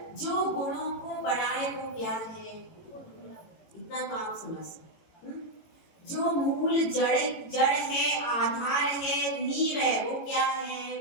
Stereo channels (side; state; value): right; late; 18 ms